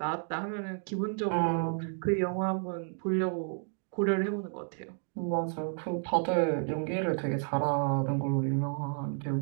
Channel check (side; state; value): left; silent; 57 dB below the other